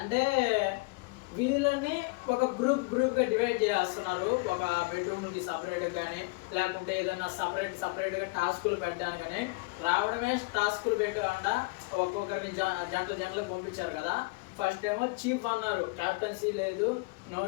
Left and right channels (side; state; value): right; quieter; 26.9 dB